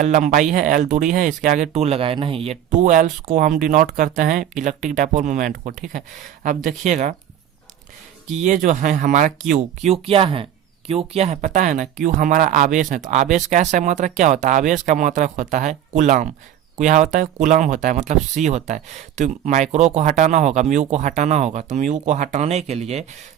लंबाई है, L दूरी है, इसके आगे 2 लगाए, नहीं, ये 2L को हम डिनोट करते हैं इलेक्ट्रिक डायपोल मोमेंट को। ठीक है, अब देखिएगा कि ये जो है हमारा Q क्या है? Q क्या है पता है ना? Q हमारा आवेश है। तो आवेश का ऐसा मात्रक क्या होता है? आवेश का मात्रक होता है कूलम। क्या होता है? कूलम होता है, मतलब C होता है। तो माइक्रो को हटाना होगा, म्यू को हटाना होगा। तो म्यू को हटाने के लिए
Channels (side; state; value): left; quieter; 10.5 dB